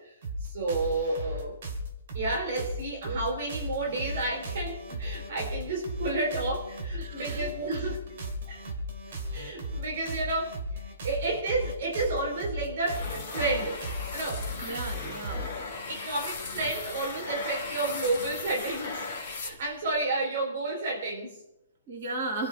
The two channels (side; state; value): both; inverted; correlation -0.48